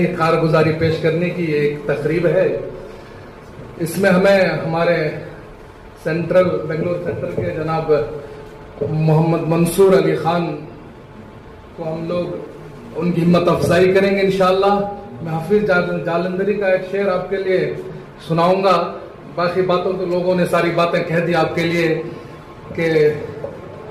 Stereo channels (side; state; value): both; identical; correlation 1.00